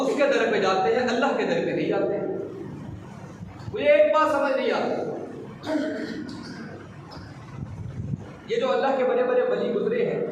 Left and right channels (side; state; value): both; identical; correlation 1.00